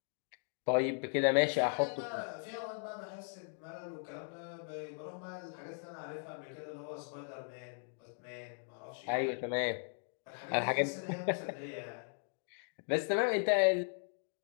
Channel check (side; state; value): right; silent; 53 dB below the other